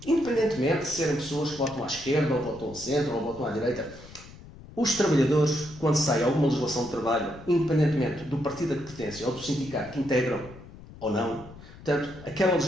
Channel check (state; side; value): noise; left; rumble, 18 dB below the sound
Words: Independentemente de serem pessoas que votam à esquerda, ou votam ao centro, ou votam à direita, os trabalhadores, quando sai alguma legislação de trabalho, independentemente do partido a que pertencem ou do sindicato que integram ou não, portanto, aquela